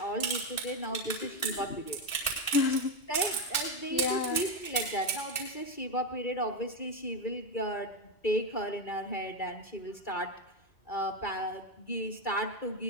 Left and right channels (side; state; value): right; late; 2.2 ms